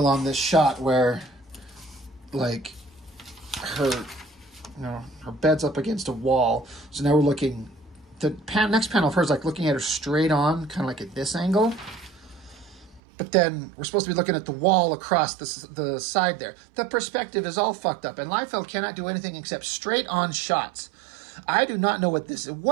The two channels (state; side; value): drops out; left; at 13.0 s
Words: on this shot where, like, her bed's up against a wall. So now we're looking, the next panel of hers, like looking at her straight on, kind of like at this angle. But then we're supposed to be looking at the wall across the side there. The perspective is all fucked up. And Liefeld cannot do anything except straight on shots. I do not know what this is.